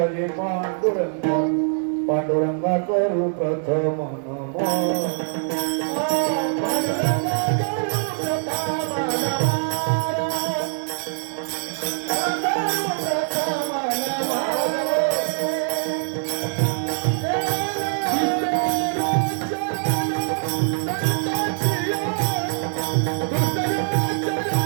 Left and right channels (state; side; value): silent; left; digital silence